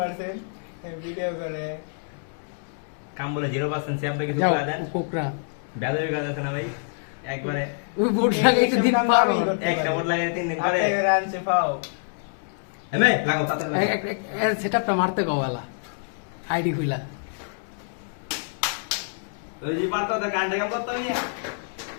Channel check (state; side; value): silent; right; digital silence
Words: ভিডিও করে কাম বলে 0% সে আপনাকে কিছু যাও করে দেন কোকরা বেদবি কাজ আছে না ভাই একবারে ওই বোর্ড লাগাই একটু দিন পারো একটা বোর্ড লাগিয়ে 3 দিন পরে হাতে রানছে পাও এমে লাগাও তাতে সেটআপটা মারতে কওয়ালা আইডি খুইলা ওই যে পারতো তো কান্ডে কাম করতে নিয়ে